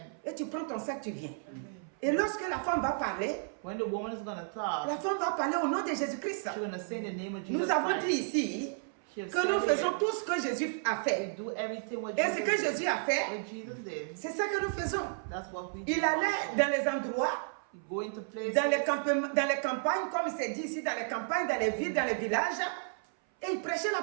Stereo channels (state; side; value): silent; left; 56 dB below the other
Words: Et tu prends ton sac, tu viens. Et lorsque la femme va parler, la femme va parler au nom de Jésus-Christ. Nous avons dit ici que nous faisons tout ce que Jésus a fait. Et ce que Jésus a fait, c'est ça que nous faisons. Il allait dans les endroits, dans les campagnes, comme il s'est dit ici, dans les campagnes, dans les villes, dans les villages, et il prêchait